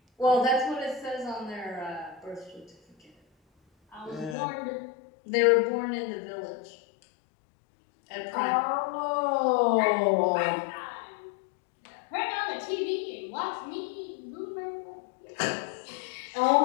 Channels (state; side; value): drops out; right; at 4.4 s